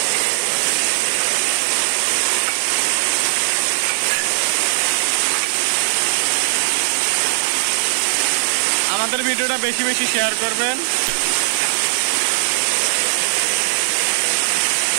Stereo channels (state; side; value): silent; left; digital silence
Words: আমাদের ভিডিওটা বেশি বেশি শেয়ার করবেন।